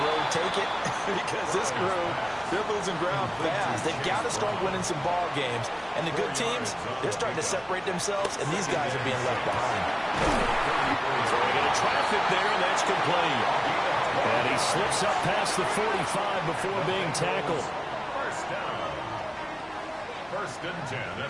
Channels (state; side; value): identical; both; correlation 1.00